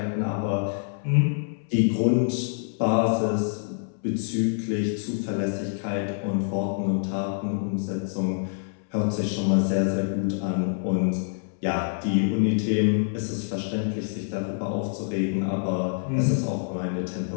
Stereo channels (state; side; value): silent; right; 61 dB below the other